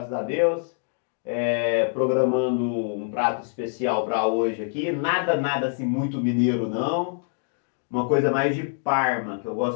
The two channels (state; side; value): silent; right; digital silence